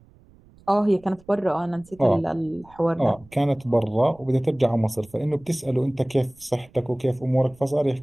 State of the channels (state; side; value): noise; right; rumble, 27 dB below the sound